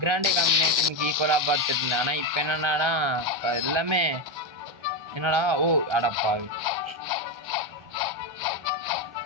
காம்பினேஷனுக்கு ஈக்குவலாக பார்த்துட்டு இருந்தேன். ஆனால் இப்போ என்னென்னா எல்லாமே என்னடா அடப்பாவி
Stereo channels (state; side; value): late; left; 1.3 ms